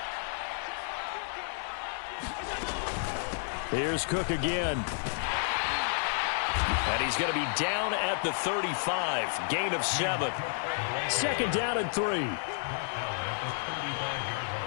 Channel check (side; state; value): right; silent; digital silence